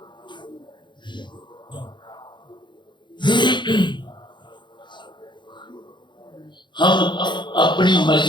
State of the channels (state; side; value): late; right; 0.22 ms